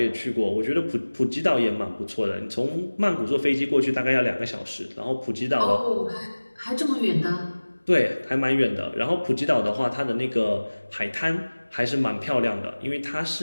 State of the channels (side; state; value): both; inverted; correlation -1.00